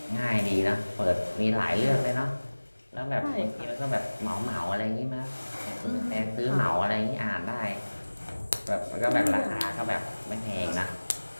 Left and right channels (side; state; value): both; inverted; correlation -1.00